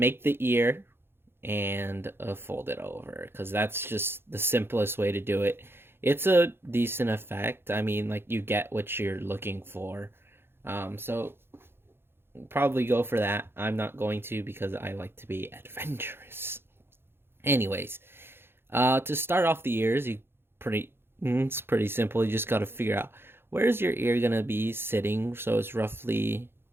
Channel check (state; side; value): late; left; 0.11 ms